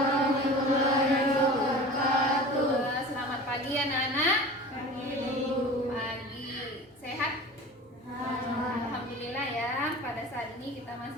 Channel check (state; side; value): normal; both; correlation 0.38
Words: wabarakatuh. Selamat pagi anak-anak. Pagi. Pagi. Sehat? Alhamdulillah ya. Pada saat ini kita